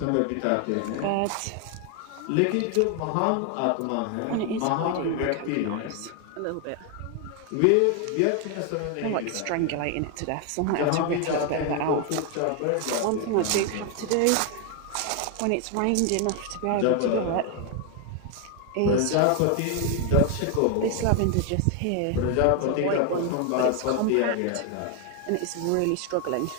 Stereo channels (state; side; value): different; both; correlation 0.01